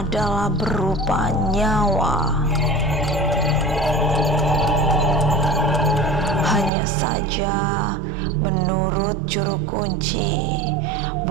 berupa nyawa. Hanya saja menurut juru kunci,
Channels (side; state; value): left; drops out; at 6.7 s